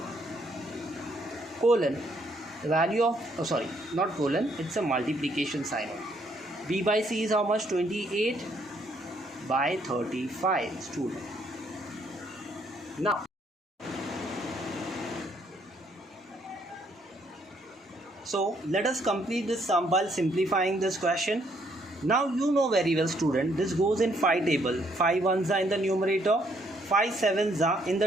Colon, the value of, not colon, it's a multiplication sign. B by c is how much? 28 by 35 student. Now so let us complete this sum by simplifying this question. Now you know very well student, this goes in 5 table. 5 ones are in the numerator, 5 sevens are in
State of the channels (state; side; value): normal; both; correlation 0.69